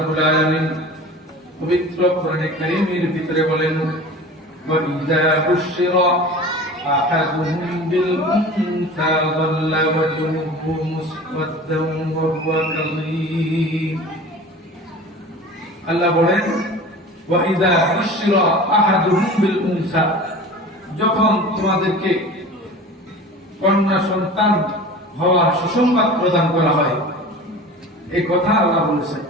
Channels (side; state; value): both; normal; correlation 0.38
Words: আলামিন পবিত্র কোরআনে কারীমের ভিতরে বলেন, ওয়া ইযা বুশিরা আহাদুহুম বিল উনসা যাল্লা ওয়াজহুহু মুসওয়াদ্দান ওয়া হুয়া কাযীম। আল্লাহ বলেন, ওয়া ইযা বুশিরা আহাদুহুম বিল উনসা, যখন তোমাদেরকে কন্যা সন্তান হওয়ার সুসংবাদ প্রদান করা হয়, এই কথা আল্লাহ বলেছেন।